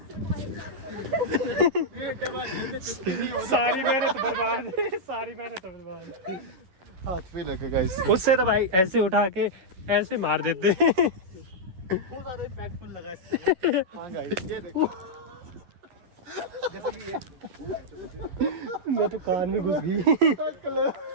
सारी मेहनत बर्बाद हाथ पे लगे गाइस उससे तो भाई ऐसे उठा के ऐसे मार देते बहुत ज्यादा इम्पैक्टफुल लगा इससे हां गाइस ये देखो जैसे कि ये मैं तो कान में घुस गई।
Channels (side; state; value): left; late; 11 ms